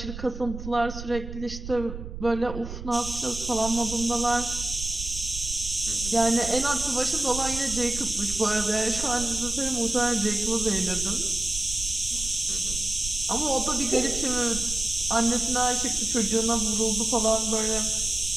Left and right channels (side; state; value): right; noise; rumble, 9 dB below the sound